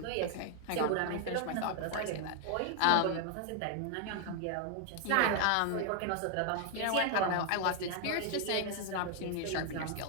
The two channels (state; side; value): different; both; correlation 0.00